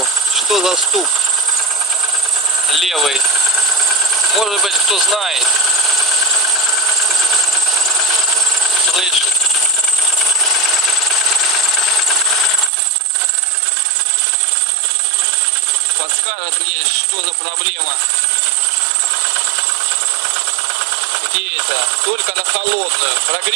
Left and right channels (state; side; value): drops out; left; at 12.7 s